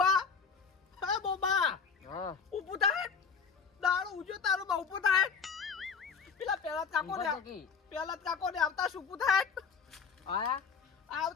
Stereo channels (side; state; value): right; quieter; 5.8 dB